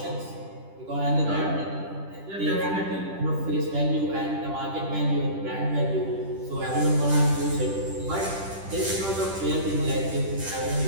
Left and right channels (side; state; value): left; late; 10 ms